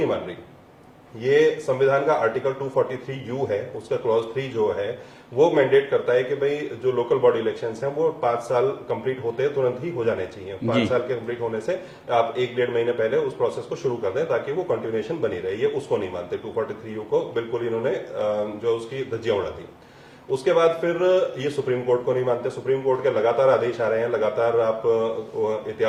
मान रही। ये संविधान का आर्टिकल 243U है, उसका क्लॉज 3 जो है वो मैंडेट करता है कि भाई जो लोकल बॉडी इलेक्शंस हैं वो 5 साल कंप्लीट होते हैं तुरंत ही हो जाने चाहिए। 5 साल के कंप्लीट होने से आप 1-1.5 महीने पहले उस प्रोसेस को शुरू कर दें ताकि वो कंटिन्यूएशन बनी रहे। ये उसको नहीं मानते, 243U को बिल्कुल इन्होंने जो उसकी धज्जियां उड़ा दी। उसके बाद फिर ये सुप्रीम कोर्ट को नहीं मानते। सुप्रीम कोर्ट के लगातार आदेश आ रहे हैं, लगातार आप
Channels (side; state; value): both; identical; correlation 1.00